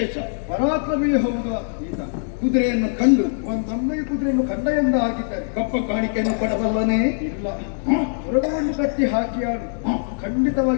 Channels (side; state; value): right; silent; digital silence